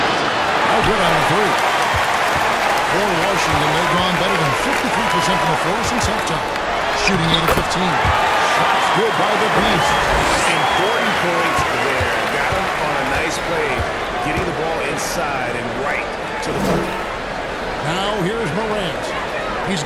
No good on the 3. For Washington, they've gone better than 53% from the floor since halftime. Shooting 8 of 15. Shots good by the Beast. Important points there. Got him on a nice play, getting the ball inside and right to the ball. Now here's Morant. He's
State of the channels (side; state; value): both; identical; correlation 1.00